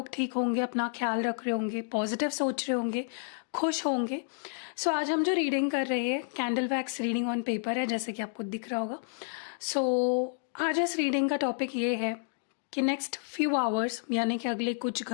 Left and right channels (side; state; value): right; silent; digital silence